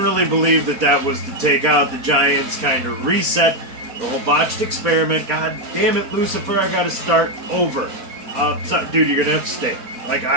believe that was to take out the giants, kind of reset the whole botched experiment. God damn it, Lucifer, I gotta start over. Dude, you're gonna have to stay. Like,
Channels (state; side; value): late; left; 4.2 ms